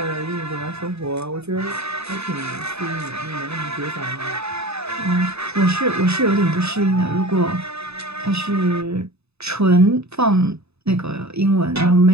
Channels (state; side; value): late; left; 0.79 ms